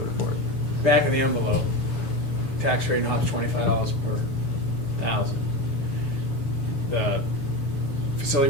for it. Back in the envelope, tax rate hops $25 per 1,000. The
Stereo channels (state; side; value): late; right; 7.0 ms